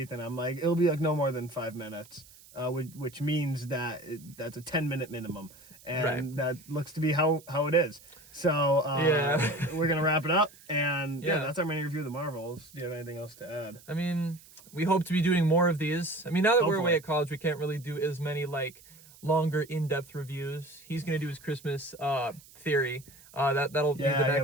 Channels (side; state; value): right; noise; hiss, 23 dB below the sound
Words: I'm like, it'll be like no more than 5 minutes, which means that that's a 10-minute minimum, and that looks to be how it is. So we're gonna wrap it up, and that's our mini review of the Marvels. Do you have anything else to add? I mean, we hope to be doing more of these. I mean, now that we're away at college, we can't really do as many like longer, in-depth reviews. He's gonna do his Christmas theory. That'll be the